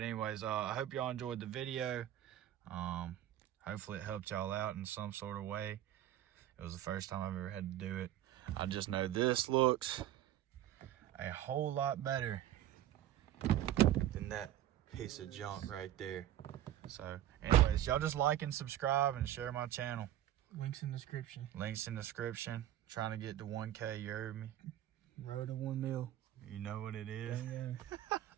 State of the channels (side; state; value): left; quieter; 12.2 dB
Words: anyways, I hope y'all enjoyed the video. Hopefully it helped y'all out in some sort of way. It was the first time I've ever had to do it. I just know this looks a whole lot better than that piece of junk right there. So anyways, y'all just like and subscribe and share my channel. Links in description. Links in description. Trying to get to 1K, you heard me? Road to 1 mil. You know what it is. Yeah.